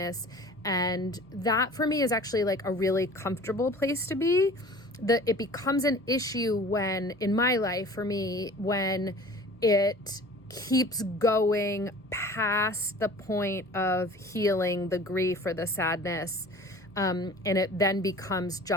And that for me is actually like a really comfortable place to be. It becomes an issue when, in my life for me, when it keeps going past the point of healing the grief or the sadness. And it then becomes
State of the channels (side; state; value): both; normal; correlation 0.44